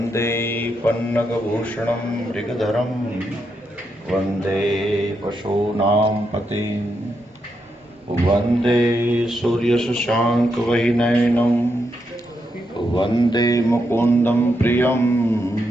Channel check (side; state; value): both; normal; correlation 0.82